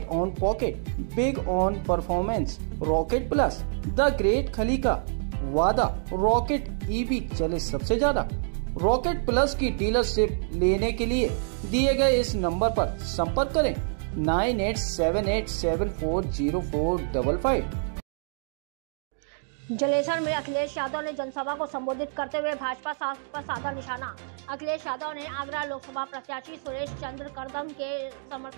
on pocket, big on performance. Rocket plus, the great खली का वादा, रॉकेट ईवी चले सबसे ज्यादा। रॉकेट प्लस की डीलरशिप लेने के लिए दिए गए इस नंबर पर संपर्क करें 9878740455। जलेसर में अखिलेश यादव ने जनसभा को संबोधित करते हुए भाजपा पर साधा निशाना। अखिलेश यादव ने आगरा लोकसभा प्रत्याशी सुरेश चंद्र करदम के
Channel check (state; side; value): silent; left; digital silence